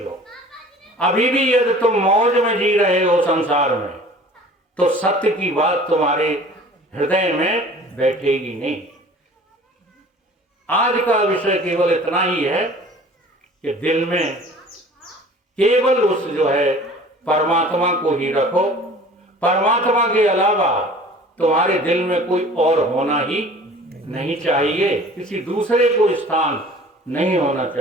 अभी भी यदि तुम मौज में जी रहे हो संसार में, तो सत्य की बात तुम्हारे हृदय में बैठेगी नहीं। आज का विषय केवल इतना ही है कि दिल में केवल उस जो है परमात्मा को ही रखो। परमात्मा के अलावा तुम्हारे दिल में कोई और होना ही नहीं चाहिए, किसी दूसरे को स्थान नहीं होना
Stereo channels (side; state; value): both; normal; correlation 0.46